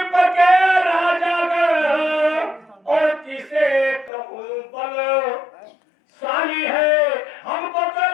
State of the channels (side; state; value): right; drops out; at 4.1 s